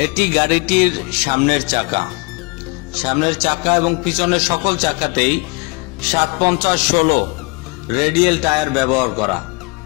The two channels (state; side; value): quieter; right; 30.1 dB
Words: এটি গাড়িটির সামনের চাকা এবং পিছনের সকল চাকাতেই 750/16 রেডিয়াল টায়ার ব্যবহার করা।